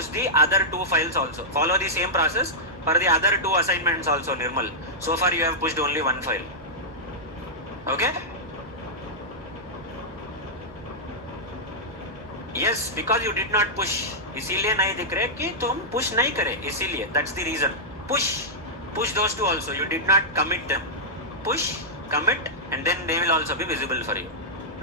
the other 2 files also. Follow the same process for the other 2 assignments also, Nirmal. So far you have pushed only one file. Okay? Yes, because you did not push. इसीलिए नहीं दिख रहे कि तुम push नहीं करे. इसीलिए. That's the reason. Push those 2 also. You did not commit them. Push, commit, and then they will also be visible for you.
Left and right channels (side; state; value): both; normal; correlation -0.10